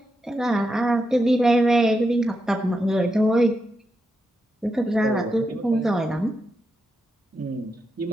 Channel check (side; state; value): both; normal; correlation 0.86